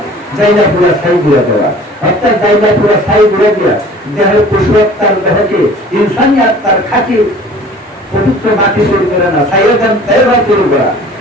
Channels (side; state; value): both; normal; correlation 0.47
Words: জায়গা পুরা ছাই ঘুরে দেওয়া, অর্থাৎ জায়গা পুরা ছাই ঘুরে দেওয়া। দেহের পশু আত্মার দেহকে ইনসানি আত্মার খাঁটি পবিত্র মাটি তৈরি করে না, সাইয়েদান তাইয়্যিবা তৈরি করা,